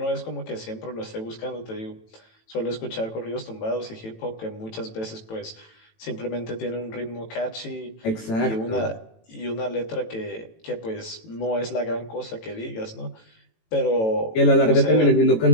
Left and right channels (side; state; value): right; late; 18 ms